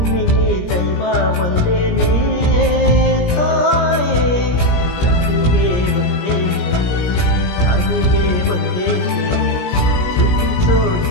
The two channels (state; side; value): late; right; 17 ms